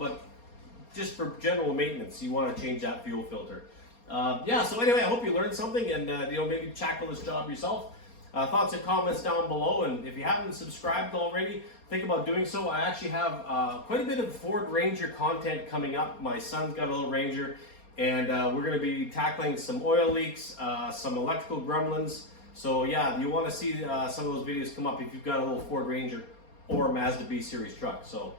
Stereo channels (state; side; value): late; right; 4.3 ms